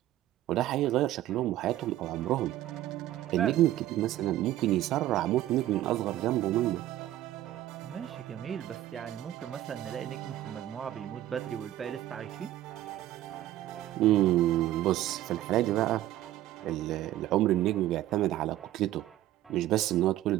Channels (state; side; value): quieter; left; 14.0 dB